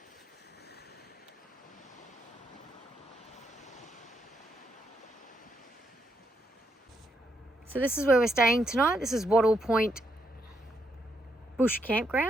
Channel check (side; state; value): both; normal; correlation 0.78